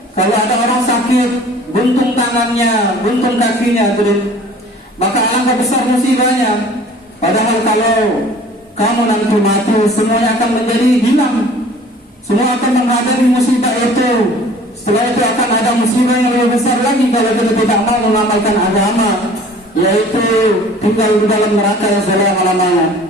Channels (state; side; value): normal; both; correlation 0.48